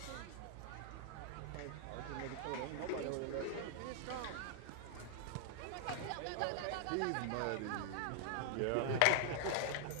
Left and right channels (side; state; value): both; different; correlation 0.00